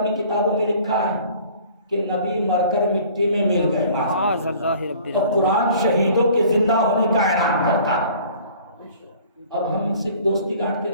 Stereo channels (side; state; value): both; inverted; correlation -0.50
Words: کتابوں میں لکھا ہے کہ نبی مر کر مٹی میں مل گئے تو قرآن شہیدوں کے زندہ ہونے کا اعلان کرتا ہے. اب ہم ان سے دوستی کاٹتے